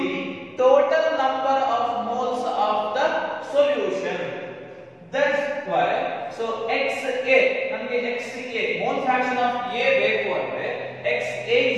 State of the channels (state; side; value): identical; both; correlation 1.00